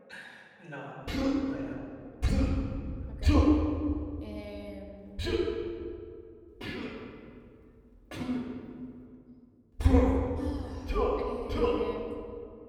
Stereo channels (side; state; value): both; identical; correlation 1.00